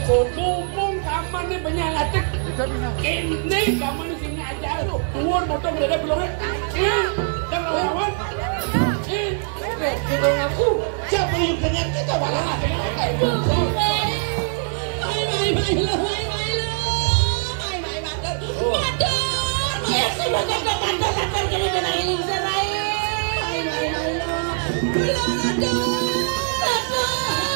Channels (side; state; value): left; silent; 55 dB below the other